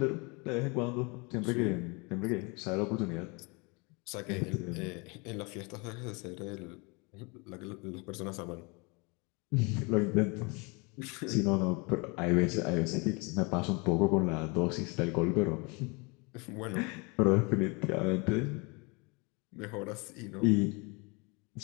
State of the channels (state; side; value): quieter; right; 29.4 dB